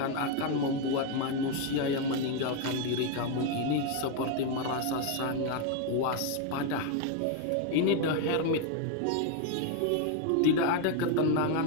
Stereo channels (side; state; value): both; different; correlation 0.01